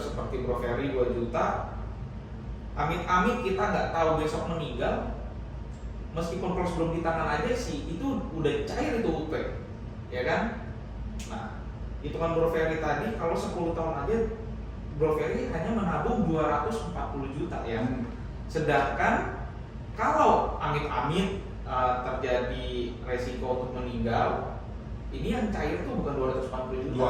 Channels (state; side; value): identical; both; correlation 1.00